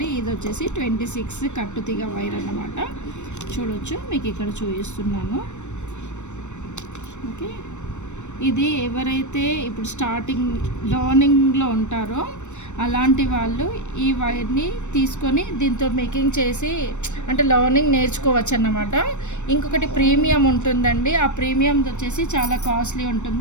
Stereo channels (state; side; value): late; right; 0.84 ms